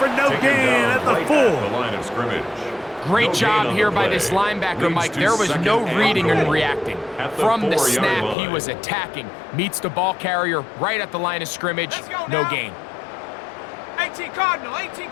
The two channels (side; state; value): right; drops out; at 8.3 s